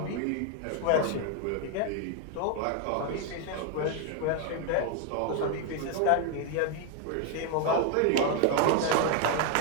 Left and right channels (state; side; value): different; both; correlation 0.01